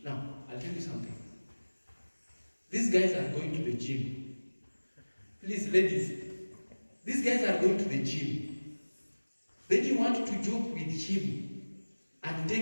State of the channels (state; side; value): inverted; both; correlation -1.00